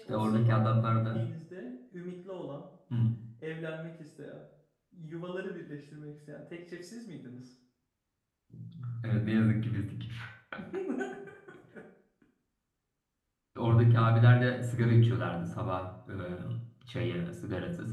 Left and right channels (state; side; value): identical; both; correlation 1.00